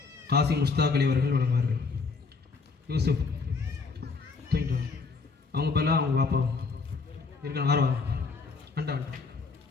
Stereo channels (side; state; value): right; quieter; 4.5 dB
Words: காசி முஸ்தாக் அலி அவர்கள் வழங்குவார்கள். யூசுப் தூங்கிட்டு வா. அவங்க பேர்லாம் அவங்க பாப்பாவும் இருக்கணும். ஆர்வா அண்டா அண்டா